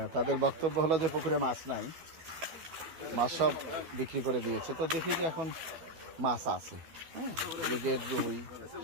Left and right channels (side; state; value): left; late; 12 ms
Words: তাদের বক্তব্য হলো যে পুকুরে মাছ নাই, মাছ সব বিক্রি করে দিয়েছে। তো দেখি যে এখন মাছ আছে, হ্যাঁ, ব্রিগেড রুই,